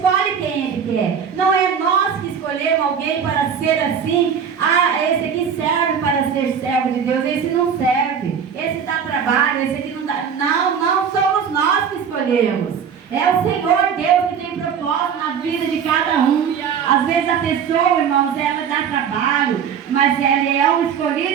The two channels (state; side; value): quieter; left; 7.4 dB